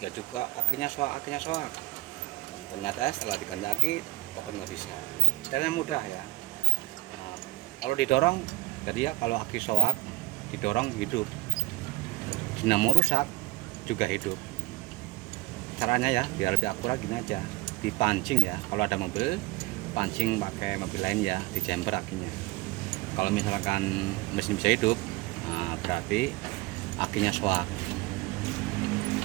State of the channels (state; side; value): quieter; left; 20.1 dB